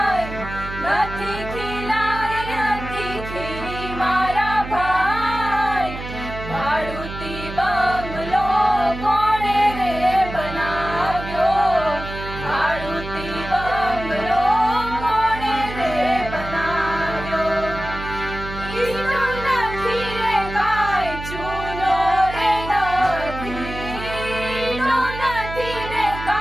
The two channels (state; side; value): noise; right; hum, 10 dB below the sound